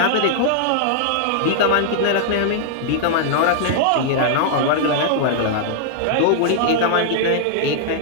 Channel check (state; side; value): different; both; correlation -0.01